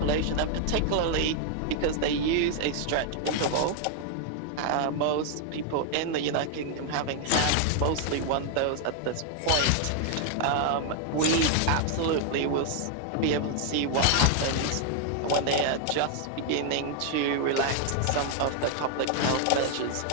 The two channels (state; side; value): different; both; correlation 0.00